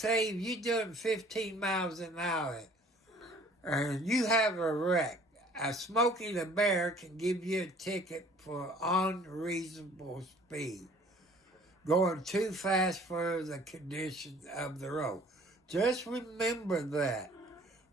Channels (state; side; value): normal; both; correlation 0.53